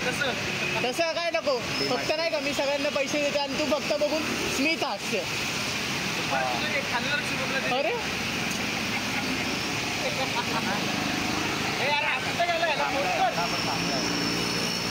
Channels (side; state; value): both; identical; correlation 1.00